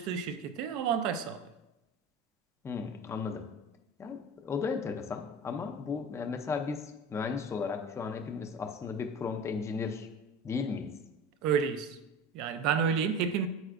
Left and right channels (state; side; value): normal; both; correlation 0.34